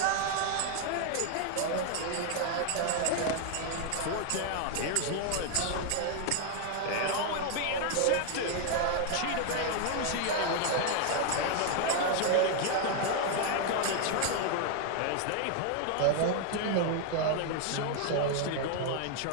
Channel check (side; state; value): both; different; correlation 0.00